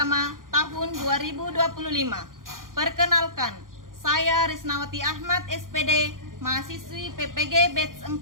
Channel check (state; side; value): late; left; 0.90 ms